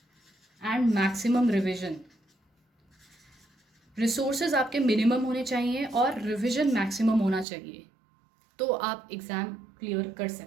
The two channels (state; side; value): drops out; left; at 7.5 s